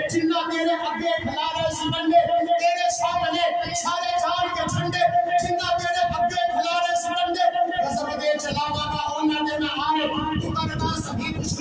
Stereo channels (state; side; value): identical; both; correlation 1.00